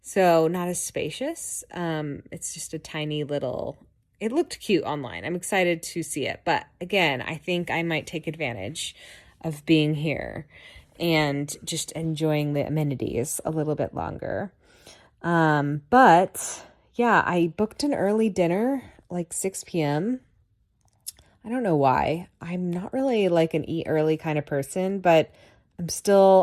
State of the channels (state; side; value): identical; both; correlation 1.00